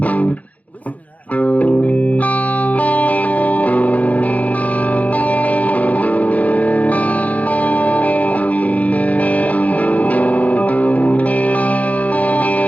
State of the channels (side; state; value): right; late; 0.070 ms